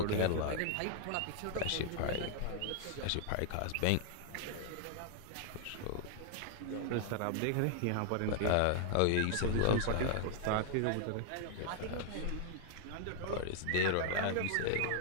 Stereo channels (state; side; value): different; both; correlation 0.00